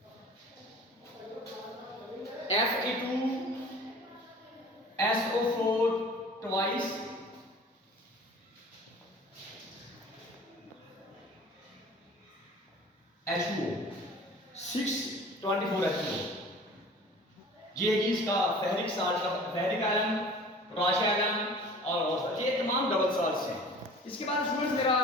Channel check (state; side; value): normal; both; correlation 0.44